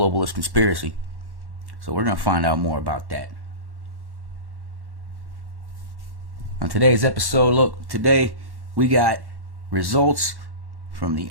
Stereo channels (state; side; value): late; left; 1.1 ms